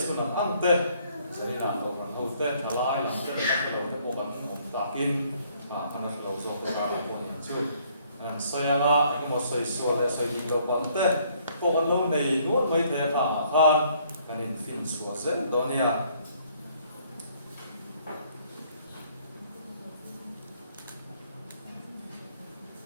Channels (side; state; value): both; inverted; correlation -0.64